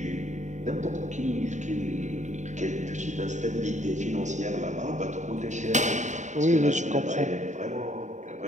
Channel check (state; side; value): late; left; 0.35 ms